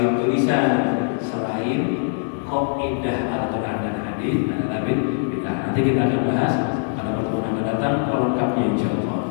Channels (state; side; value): silent; right; digital silence